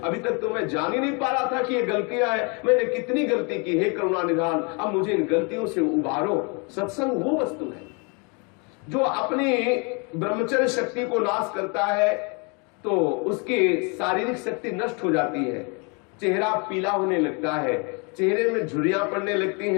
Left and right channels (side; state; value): right; quieter; 33.2 dB